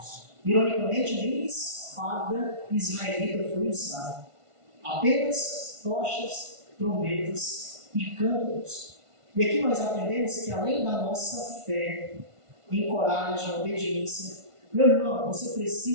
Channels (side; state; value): left; late; 1.5 ms